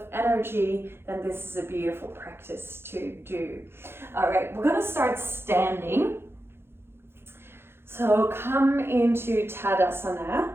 energy, then this is a beautiful practice to do. All right, we're gonna start standing. So come into Tadasana,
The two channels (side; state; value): left; late; 0.11 ms